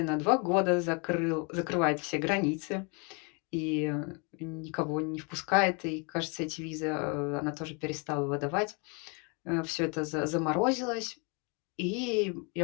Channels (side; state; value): right; quieter; 33.4 dB